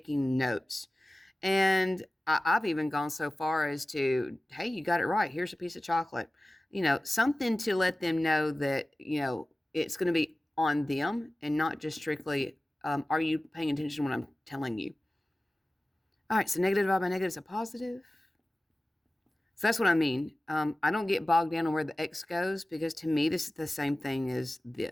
notes. And I've even gone so far as to, hey, you got it right. Here's a piece of chocolate. Something to let them know that, it's going to be on them and not just strictly, are you paying attention to what I'm telling you? All right, so negative divided by negative is a positive. So that's what I mean. I don't get bogged down on where the x goes because to me, this is the same thing as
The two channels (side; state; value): both; normal; correlation 0.97